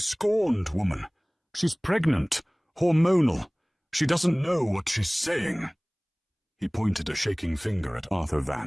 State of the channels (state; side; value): identical; both; correlation 1.00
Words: woman. She's pregnant, hormonal. She doesn't know what she's saying." He pointed a shaking finger at Arthur